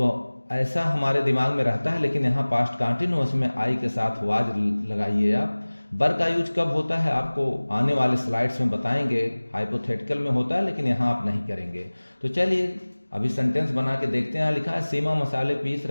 ऐसा हमारे दिमाग में रहता है। लेकिन यहाँ पास्ट कंटिन्यूअस में आई के साथ वाज लगाइए आप। बर का यूज कब होता है आपको आने वाले स्लाइड्स में बताएंगे, हाइपोथेटिकल में होता है, लेकिन यहाँ आप नहीं करेंगे। तो चलिए अभी सेंटेंस बना के देखते हैं। लिखा है सीमा मसाले पीस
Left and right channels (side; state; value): both; inverted; correlation -1.00